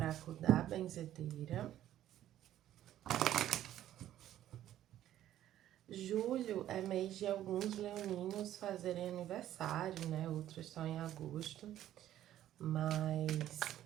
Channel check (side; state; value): left; quieter; 12.4 dB